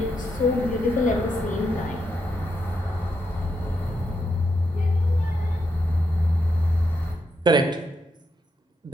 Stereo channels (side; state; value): both; normal; correlation 0.82